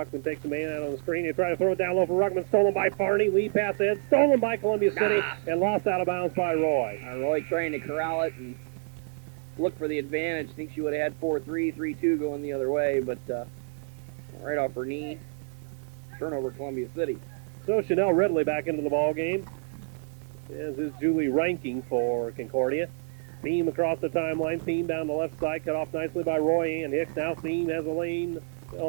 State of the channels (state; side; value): silent; left; 59 dB below the other